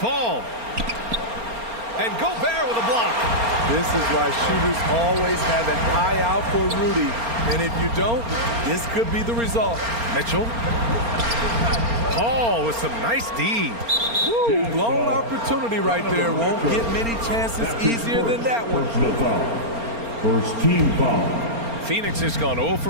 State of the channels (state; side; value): late; left; 4.3 ms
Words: And Gobert with a block. This is why shooters always have an eye out for Rudy. And if you don't, this could be the result. Mitchell. Paul with some nice D. Woo, blown opportunity right there. Won't get many chances easier than that one. Personal foul. First team foul. Phoenix has gone 0 for